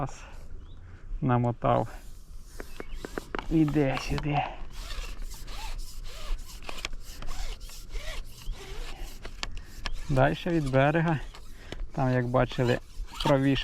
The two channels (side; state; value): both; identical; correlation 1.00